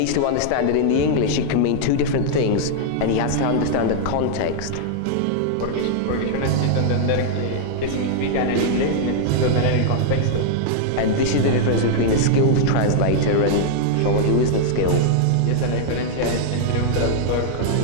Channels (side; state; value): both; different; correlation -0.01